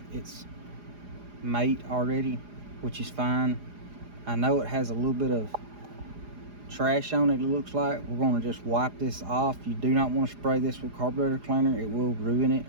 its mate already, which is fine. I know it has a little bit of trash on it, it looks like. We're going to just wipe this off. You do not want to spray this with carburetor cleaner. It will ruin it.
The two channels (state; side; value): late; left; 4.9 ms